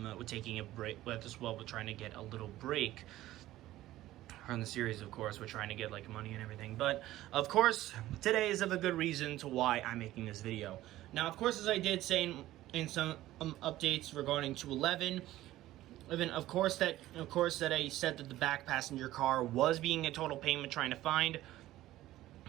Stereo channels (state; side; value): quieter; left; 15.3 dB